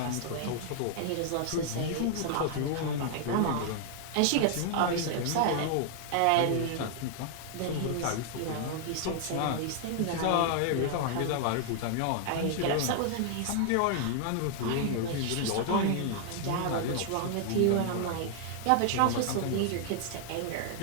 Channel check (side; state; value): both; different; correlation 0.00